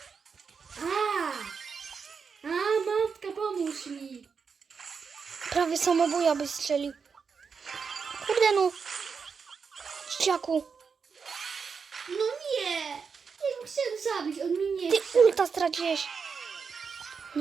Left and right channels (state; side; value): quieter; left; 5.7 dB